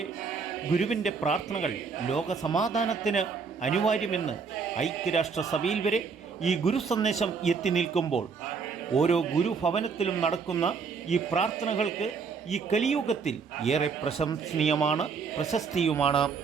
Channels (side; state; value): left; quieter; 5.4 dB